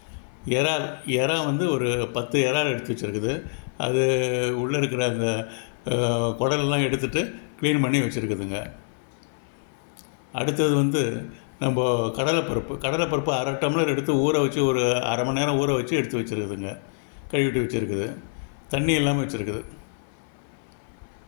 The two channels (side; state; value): right; silent; 57 dB below the other